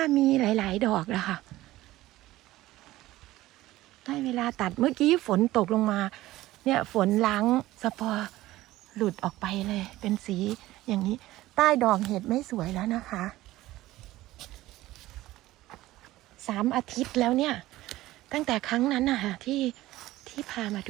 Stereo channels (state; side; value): quieter; left; 16.5 dB